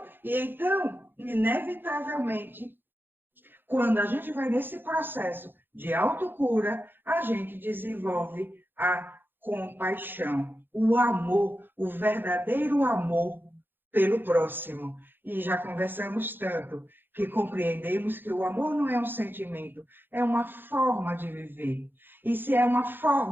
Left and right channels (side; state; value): left; late; 0.099 ms